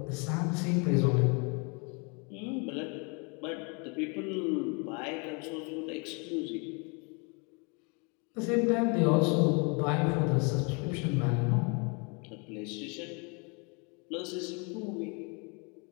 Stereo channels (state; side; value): quieter; right; 33.1 dB